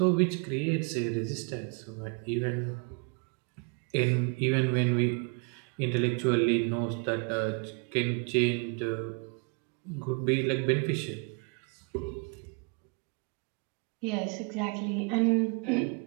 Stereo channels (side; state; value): left; quieter; 32.8 dB